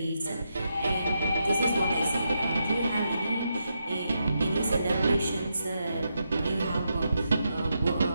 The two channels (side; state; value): both; inverted; correlation -0.84